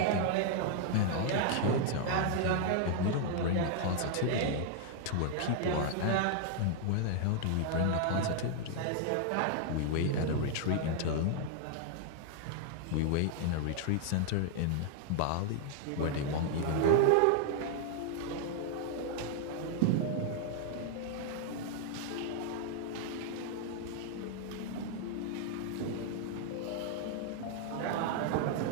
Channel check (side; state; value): both; different; correlation 0.00